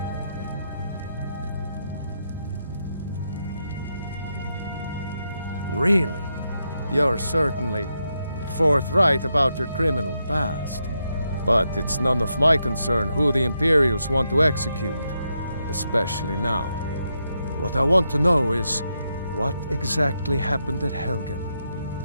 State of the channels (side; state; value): both; inverted; correlation -0.83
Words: Really? You're certainly forthright about your criminal past. But it's none of my concern who the Imperials want to execute, especially now. What I want to know is, what exactly happened at Helgen?